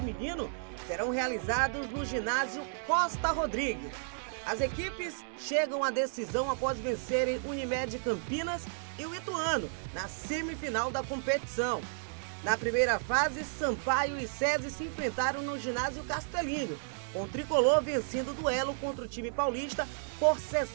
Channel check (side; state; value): left; silent; 56 dB below the other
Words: serão realizados no ginásio Costa Rodrigues. As equipes chegam à decisão após vencerem Unimed Campinas e o Ituano na semifinal da competição. Na primeira fase, Sampaio e César se enfrentaram no ginásio Castelinho, com o tricolor vencendo o duelo contra o time paulista por